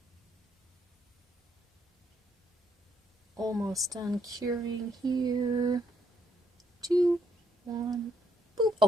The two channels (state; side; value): normal; both; correlation 0.73